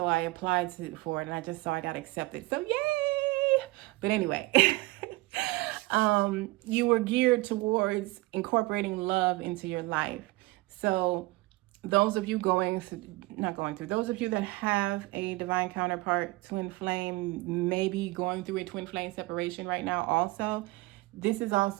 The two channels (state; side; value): quieter; left; 21.7 dB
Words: I applied for it, and I just saw I got accepted. So yay! But anyway, you were geared towards incorporating love into your life. So those of you those of you that have a divine counterpart, twin flame, maybe going through a twin flame separation right now also, this is